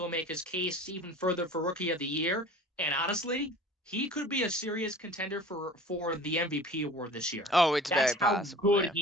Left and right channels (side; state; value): both; normal; correlation 0.42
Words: make his case even further for Rookie of the Year. And honestly, he could be a serious contender for the MVP award this year. Oh, it's That's very possible. how good